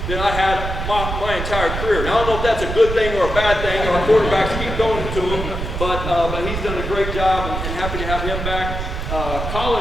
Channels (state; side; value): noise; right; rumble, 4 dB below the sound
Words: than I had my entire career. Now, I don't know if that's a good thing or a bad thing. Our quarterbacks keep going to him, but he's done a great job, and happy to have him back.